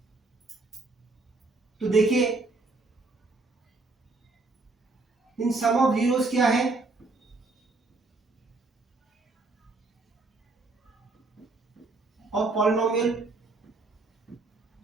तो देखिए इन सम ऑफ जीरोस क्या है? और पॉलिनोमियल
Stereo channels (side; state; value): left; quieter; 3.4 dB